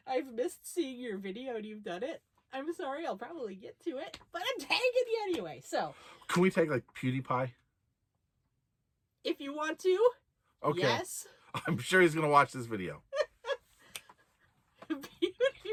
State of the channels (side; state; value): both; identical; correlation 1.00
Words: I've missed seeing your video and you've done it, I'm sorry, I'll probably get to it, but I'm tagging you anyway. So, can we tag like PewDiePie? If you want to, okay. Yes. I'm sure he's going to watch this video.